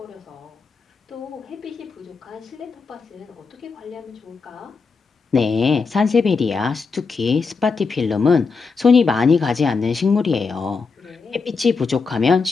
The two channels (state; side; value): quieter; right; 4.7 dB